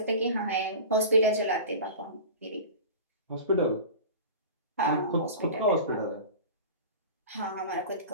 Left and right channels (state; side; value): inverted; both; correlation -0.35